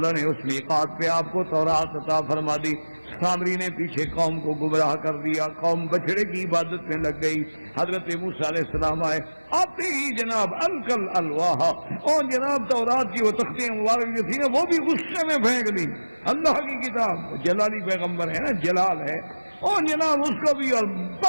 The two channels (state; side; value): inverted; both; correlation -1.00